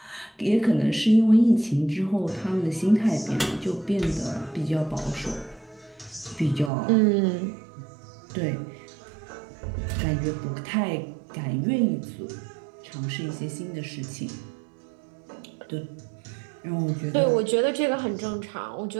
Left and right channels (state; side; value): drops out; left; at 6.7 s